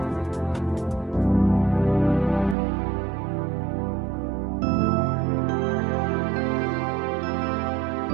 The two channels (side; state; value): left; drops out; at 2.6 s